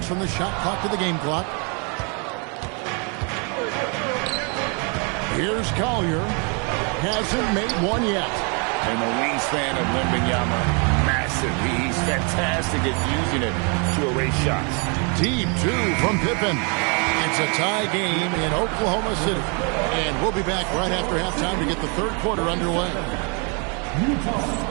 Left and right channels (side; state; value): left; quieter; 35.5 dB